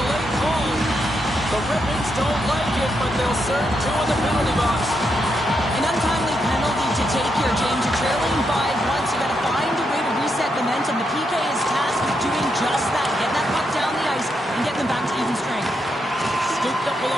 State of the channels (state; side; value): normal; both; correlation 0.81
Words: call. The Red Wings don't like it, but they'll serve 2 in the penalty box. An untimely penalty to take here, James. You're trailing by once. You got to